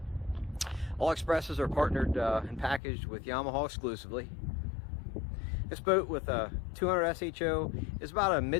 All Xpresses are partnered and packaged with Yamaha exclusively. This boat with a 200 SHO is about a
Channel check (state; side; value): drops out; right; at 2.8 s